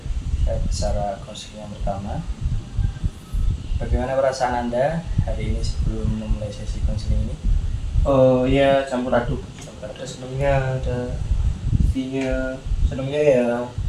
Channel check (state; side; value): identical; both; correlation 1.00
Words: Siap secara konseling yang pertama. Bagaimana perasaan Anda hari ini sebelum memulai sesi konseling ini? Oh ya, campur aduk. Ada senangnya, ada sedihnya. Senangnya